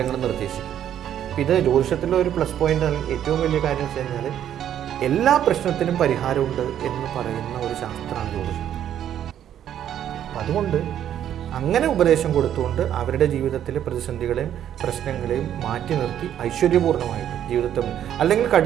നിർദ്ദേശിക്കും. ഇത് ജ്യോതിഷത്തിലെ ഒരു പ്ലസ് പോയിൻ്റ്, അല്ലെങ്കിൽ ഏറ്റവും വലിയ കാര്യം വെച്ച് കഴിഞ്ഞാൽ എല്ലാ പ്രശ്നത്തിനും പരിഹാരമുണ്ട് എന്ന് പറയുന്ന ഒരു ശാസ്ത്രമാണ് ജ്യോതിഷം. അതുകൊണ്ട് അങ്ങനെ ഉപദേശം കൊടുത്തുകൊണ്ട് അവരുടെ ജീവിതത്തിലെ പ്രതിസന്ധികളെയും പ്രശ്നങ്ങളെയും മാറ്റി നിർത്തി ഐശ്വര്യപൂർണ്ണമായിട്ട് ജീവിതത്തിൽ, അല്ലെങ്കിൽ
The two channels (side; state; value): left; quieter; 10.4 dB